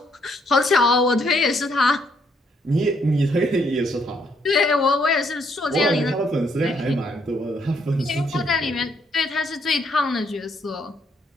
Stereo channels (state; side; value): normal; both; correlation 0.71